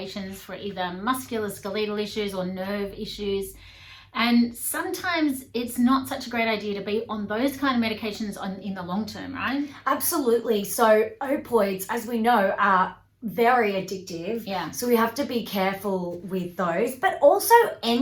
for either musculoskeletal issues or nerve issues. And sometimes it's not such a great idea to be on those kind of medications in the long term, right? Absolutely. So opioids, as we know, are very addictive. Yeah. So we have to be careful with those, but also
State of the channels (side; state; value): both; identical; correlation 1.00